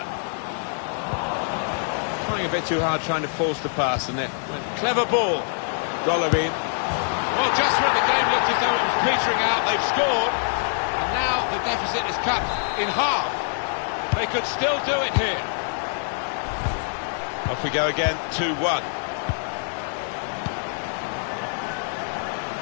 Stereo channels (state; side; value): silent; right; 62 dB below the other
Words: Trying a bit too hard, trying to force the pass, and it went clever ball. Golovin. Well, just when the game looked as though it was petering out, they've scored, and now the deficit is cut in half. They could still do it here. Off we go again, 2-1.